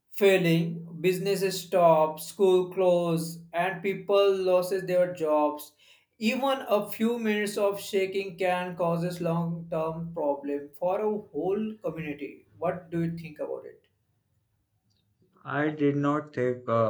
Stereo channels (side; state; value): both; identical; correlation 1.00